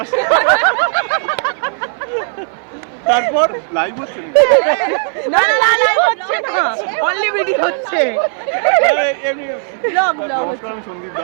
তারপর লাইভ হচ্ছে না লাইভ হচ্ছে না অনলি ভিডিও হচ্ছে ব্লগ আমি সন্দীপ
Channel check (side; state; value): left; silent; 58 dB below the other